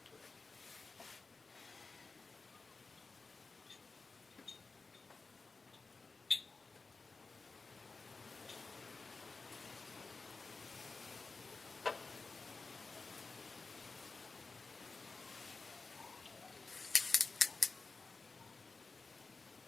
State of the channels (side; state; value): right; quieter; 4.1 dB